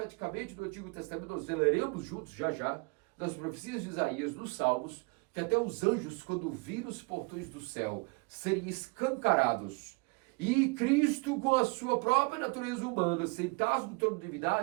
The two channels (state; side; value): quieter; left; 30.5 dB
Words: no Antigo Testamento, nós leremos juntos já, nas profecias de Isaías, nos Salmos, que até os anjos, quando viram os portões do céu serem escancarados, e Cristo, com a sua própria natureza humana, sentados no trono de